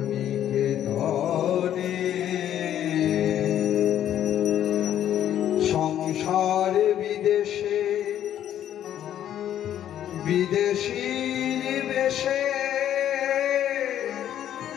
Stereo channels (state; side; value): quieter; right; 10.9 dB